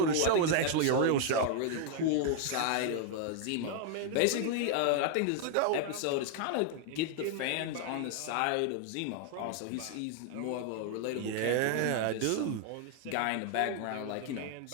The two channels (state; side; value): different; both; correlation 0.00